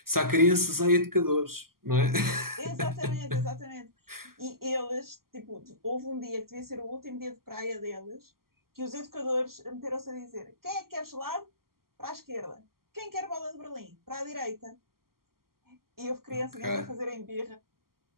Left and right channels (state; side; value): late; left; 0.92 ms